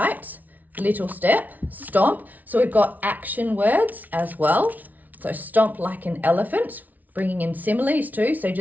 little step, stomp. So we've got action words as well. So stomp like an elephant, bringing in similes too. So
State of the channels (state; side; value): late; left; 0.077 ms